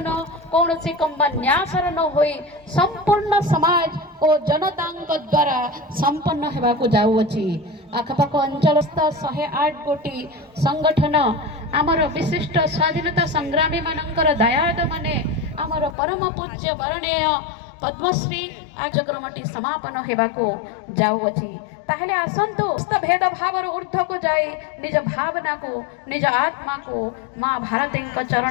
कौन सी कंपन्यासर न होई संपूर्ण समाज और जनता द्वारा संपन्न हेबाकु जाउछि। आखपाख अंचलस्थ 108 गोटी संगठन आमर विशिष्ट स्वाधीनता संग्रामी मानकर दयाद माने आमर परम पूज्य वरणीय पद्मश्री कार्यक्रमटी समापन हेबाकु जाउछि। ताहले आसंतु भेद भाव ऊर्ध्व को जाई निज भावना को निज आत्मा को माँ भारती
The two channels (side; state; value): right; drops out; at 16.0 s